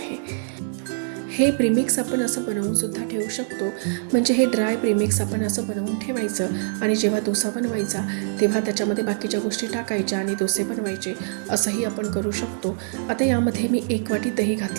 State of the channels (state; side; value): silent; left; 61 dB below the other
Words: हे प्रीमिक्स आपण असं बनवून सुद्धा ठेवू शकतो. म्हणजे हे ड्राय प्रीमिक्स आपण असं बनवून ठेवायचं आणि जेव्हा डोसा बनवायचा तेव्हा त्याच्यामध्ये बाकीच्या गोष्टी टाकायच्या आणि डोसे बनवायचे, असंही आपण करू शकतो. आता यामध्ये मी 1 वाटी दही